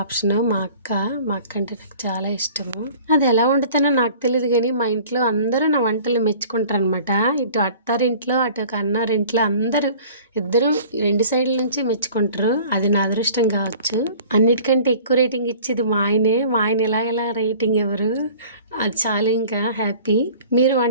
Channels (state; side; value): inverted; both; correlation -0.47